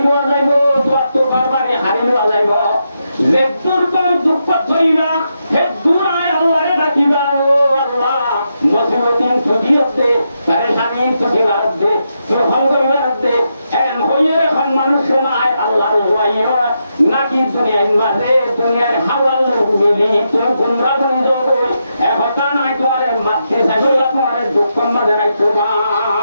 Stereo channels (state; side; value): inverted; both; correlation -0.83